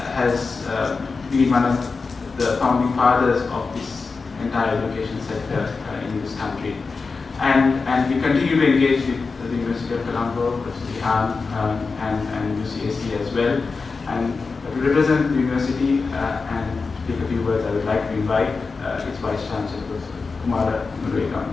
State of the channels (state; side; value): quieter; right; 4.4 dB